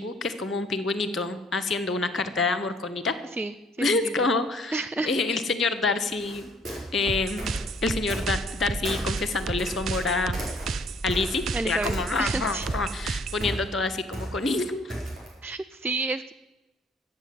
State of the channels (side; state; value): both; normal; correlation 0.60